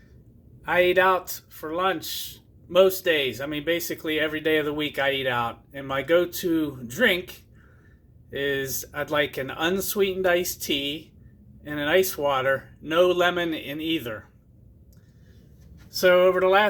I eat out for lunch most days. I mean, basically every day of the week I eat out. And my go-to drink is I'd like an unsweetened iced tea and an ice water, no lemon in either. So over the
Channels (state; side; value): identical; both; correlation 1.00